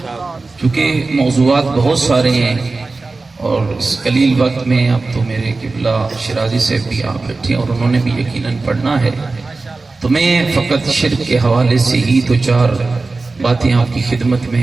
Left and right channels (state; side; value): quieter; left; 3.6 dB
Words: چونکہ موضوعات بہت سارے ہیں اور اس قلیل وقت میں اب تو میرے قبلہ شرازی سے بھی آپ بیٹھے اور انہوں نے بھی یقیناً پڑھنا ہے، تو میں فقط شرک کے حوالے سے ہی دو چار باتیں آپ کی خدمت